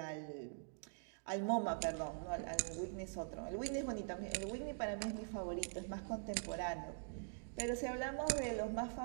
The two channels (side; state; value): left; silent; digital silence